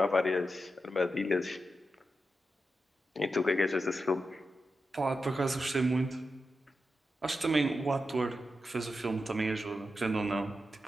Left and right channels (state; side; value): normal; both; correlation 0.89